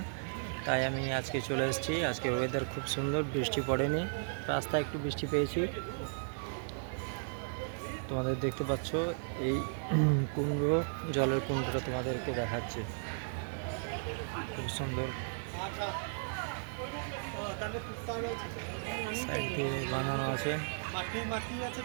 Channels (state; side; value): silent; left; digital silence